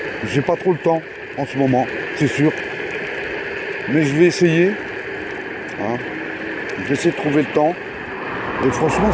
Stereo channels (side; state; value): both; identical; correlation 1.00